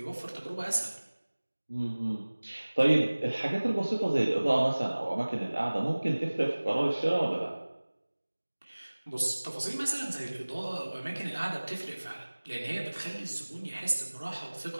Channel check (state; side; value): inverted; both; correlation -1.00